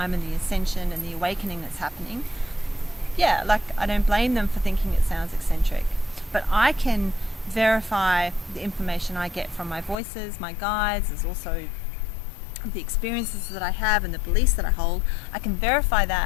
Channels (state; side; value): drops out; right; at 10.0 s